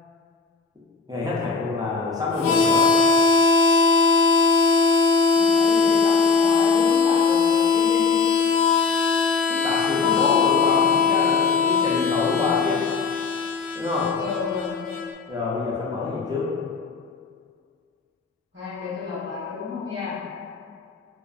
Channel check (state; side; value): quieter; right; 4.7 dB